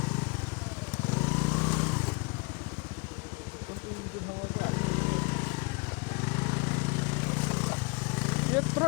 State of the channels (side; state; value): right; quieter; 30.4 dB